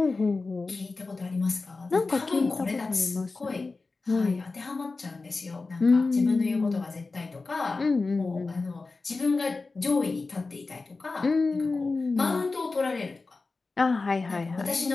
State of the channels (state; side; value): quieter; right; 3.8 dB